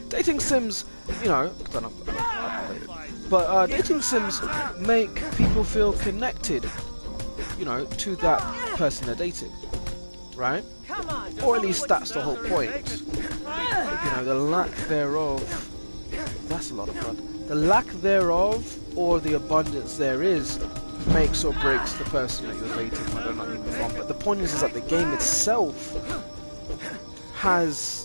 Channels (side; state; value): both; inverted; correlation -1.00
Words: dating sims, you know, I don't but dating sims make people feel connected, you know, to that person they're dating, right? Come on. Or at least that's the whole point. You know, the lack thereof, that's a lot of blood. The lack thereof, or the abundance there is, makes or breaks the person that you're dating, whether or not you move on. But the point is that the game itself